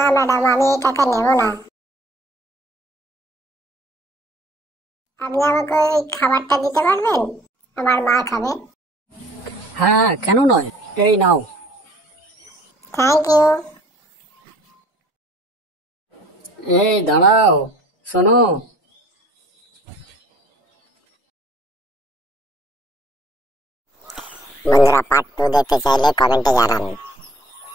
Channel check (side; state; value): both; normal; correlation 0.55